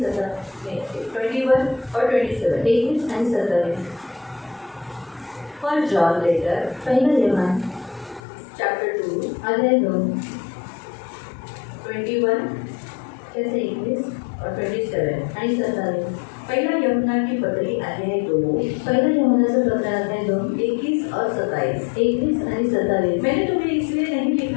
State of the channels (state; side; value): drops out; right; at 8.2 s